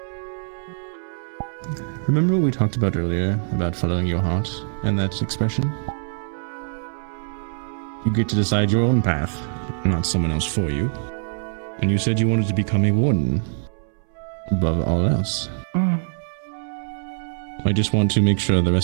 Remember what we talked about earlier about following your heart and that expression? You get to decide your own path, not someone else for you. And you said you wanted to become a warden above all else. I just want to make sure the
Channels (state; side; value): silent; left; 63 dB below the other